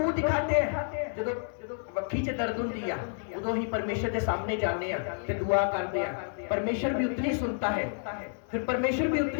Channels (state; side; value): silent; right; digital silence